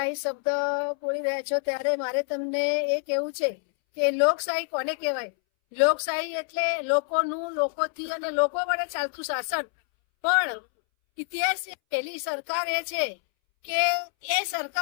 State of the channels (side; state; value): right; silent; 60 dB below the other